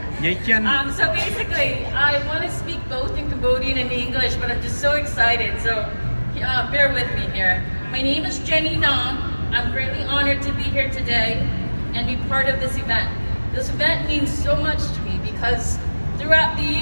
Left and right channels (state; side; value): inverted; both; correlation -1.00